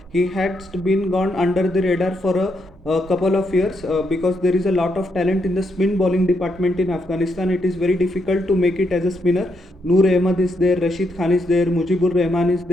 He has been gone under the radar for a couple of years because there is a lot of talent in the spin bowling department in Afghanistan. It is very difficult to make it as a spinner. Noor Ahmed is there, Rashid Khan is there, Mujibur Rahman is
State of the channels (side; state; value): both; normal; correlation 0.79